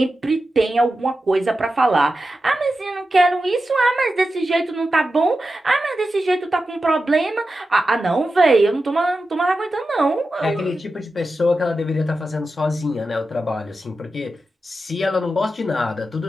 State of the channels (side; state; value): both; normal; correlation 0.91